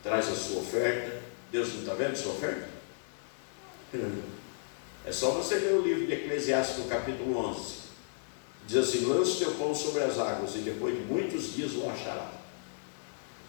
traz a sua oferta, Deus não está vendo a sua oferta? É só você ler o livro de Eclesiastes, capítulo 11. Diz assim: lança o teu pão sobre as águas, e depois de muitos dias o achará.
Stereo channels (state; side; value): silent; right; digital silence